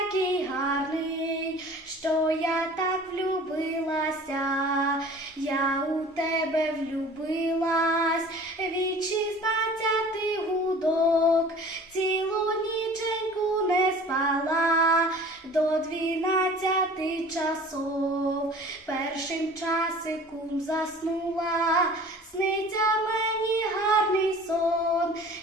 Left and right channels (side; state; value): both; normal; correlation 0.45